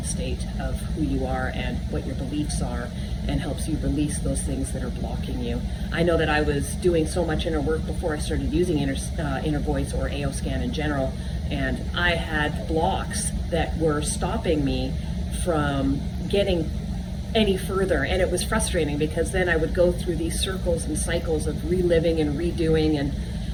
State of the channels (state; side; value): identical; both; correlation 1.00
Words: state of who you are and what your beliefs are, and helps you release those things that are blocking you. I know that I was doing so much inner work before I started using Inner Voice or AO scan in general, and I had blocks that were stopping me from getting any further, and it was frustrating because then I would go through these circles and cycles of reliving and redoing,